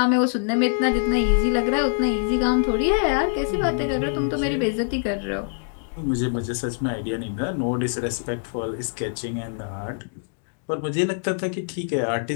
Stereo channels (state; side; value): silent; right; digital silence